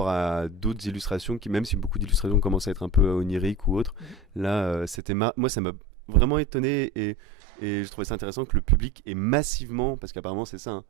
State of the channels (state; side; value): drops out; left; at 5.0 s